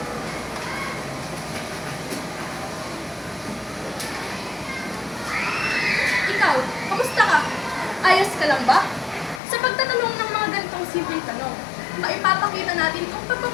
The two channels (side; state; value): right; drops out; at 9.4 s